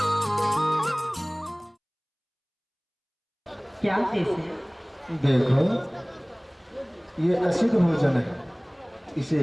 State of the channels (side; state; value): both; identical; correlation 1.00